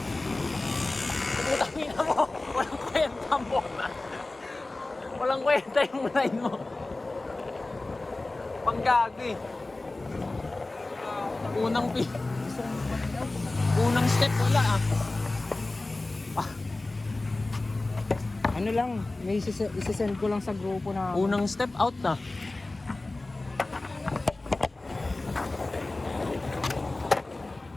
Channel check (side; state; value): right; quieter; 3.0 dB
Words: Tangina mo. Walang kwenta mo. Walang kwenta yung line mo. Panggagi. Unang step wala ah. Ano lang, may isisend ko lang sa grupo na Unang step out na.